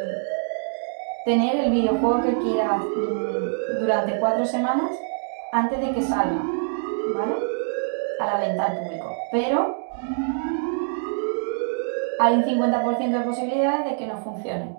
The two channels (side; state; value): left; silent; digital silence